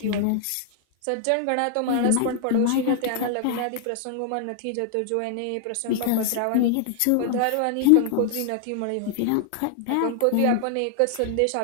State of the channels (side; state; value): both; different; correlation -0.01